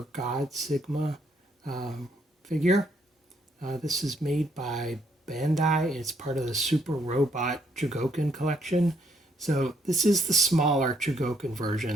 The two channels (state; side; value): normal; both; correlation 0.71